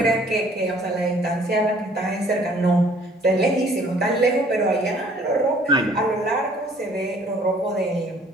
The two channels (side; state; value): both; normal; correlation 0.57